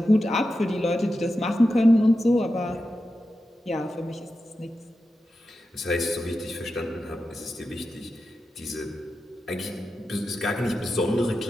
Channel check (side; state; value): both; normal; correlation 0.91